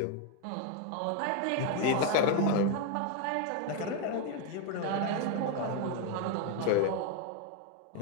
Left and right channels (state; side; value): different; both; correlation 0.01